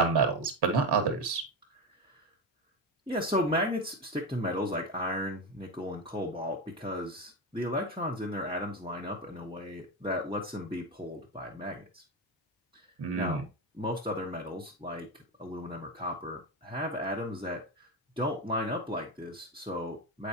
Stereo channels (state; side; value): normal; both; correlation 0.15